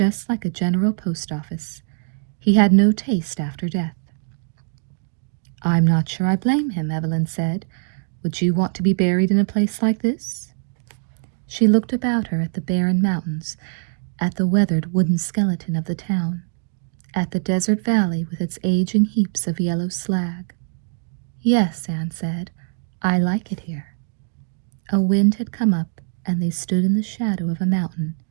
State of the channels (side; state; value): left; silent; digital silence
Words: like a general post office. He had no taste after death." "I'm not sure I blame him," Evelyn said. "Would you want to be buried in a place like this?" She looked about her at the barren mountains, at the weathered wooden skeleton of the town, at the desert valley with its aging heaps of yellow slag. "Yes," Anne said, "I like it here." A wind had come up, and they stood in the shadow of a mountain.